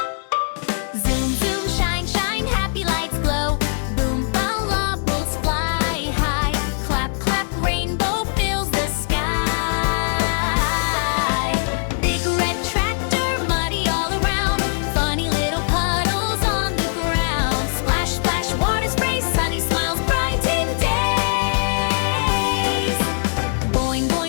Zoom, zoom, shine, shine, happy lights glow. Boom, bubbles fly high. Clap, clap, rainbow fills the sky. Big red tractor, muddy all around. Funny little puddles on the ground. Splash, splash, water spray, sunny smiles, brighten days. Boing,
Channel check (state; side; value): silent; right; 65 dB below the other